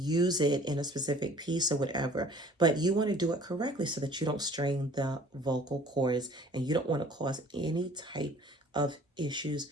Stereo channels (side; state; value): both; normal; correlation 0.51